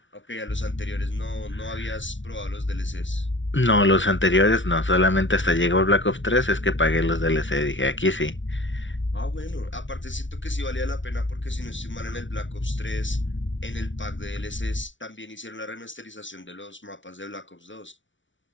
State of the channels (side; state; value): right; late; 0.56 ms